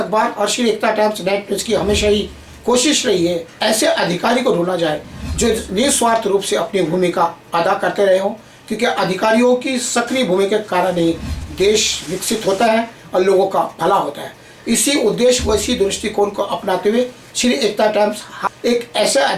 और श्री एकता टाइम्स नेट न्यूज की हमेशा ही कोशिश रही है ऐसे अधिकारी को ढूंढा जाए जो निस्वार्थ रूप से अपनी भूमिका अदा करते रहे हों, क्योंकि अधिकारियों की सक्रिय भूमिका के कारण ही देश विकसित होता है और लोगों का भला होता है। इसी उद्देश्य व इसी दृष्टिकोण को अपनाते हुए श्री एकता टाइम्स एक ऐसे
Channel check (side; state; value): both; identical; correlation 1.00